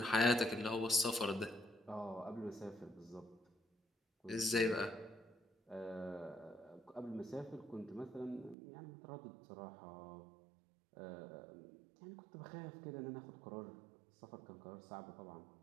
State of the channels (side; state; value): left; drops out; at 8.6 s